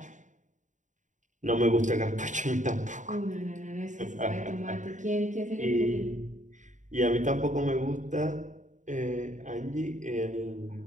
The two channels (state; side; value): late; left; 0.36 ms